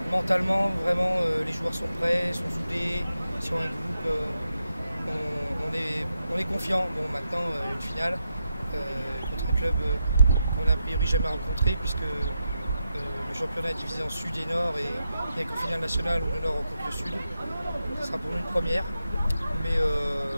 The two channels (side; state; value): both; inverted; correlation -0.86